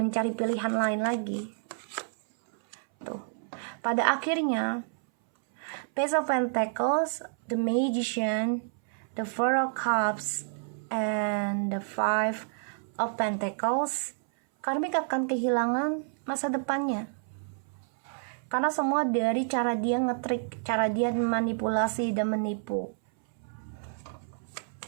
pilihan lain lagi. Tuh. Pada akhirnya, Page of Pentacles, the Magician, the Four of Cups, and the Five of Pentacles, karmik akan kehilangan masa depannya. Karena semua dari cara dia ngetrik, cara dia manipulasi dan menipu.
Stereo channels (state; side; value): silent; left; 58 dB below the other